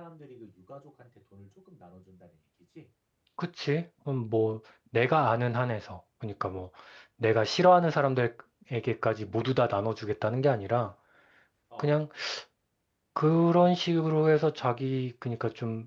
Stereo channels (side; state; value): both; identical; correlation 1.00